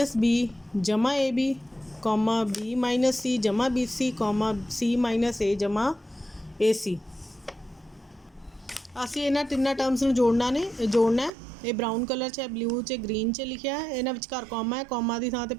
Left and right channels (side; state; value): left; drops out; at 11.3 s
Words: बी जमा A B, comma B minus C जमा B C, comma C minus A जमा ए सी। असीं इन्हां तिन्नां टर्म्स नूं जोड़ना है। ये ब्राउन कलर च, ब्लू च, ग्रीन च लिखिया है, इन्हां विचकार कॉमा है। कॉमा की थां ते